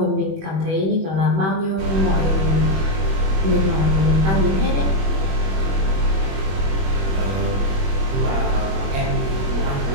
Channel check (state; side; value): late; left; 21 ms